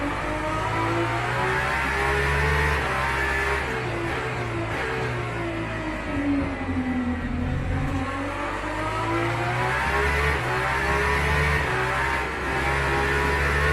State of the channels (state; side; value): identical; both; correlation 1.00